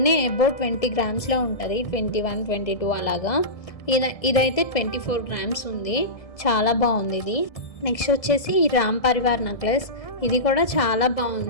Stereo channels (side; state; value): right; late; 1.6 ms